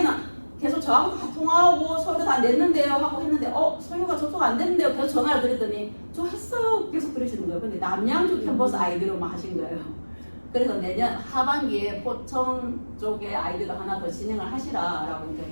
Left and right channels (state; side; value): inverted; both; correlation -1.00